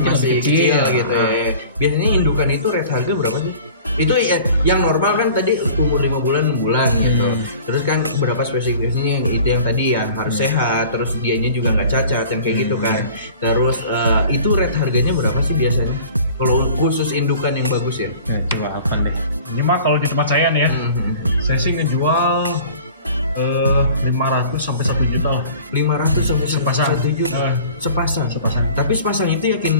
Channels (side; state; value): both; inverted; correlation -0.45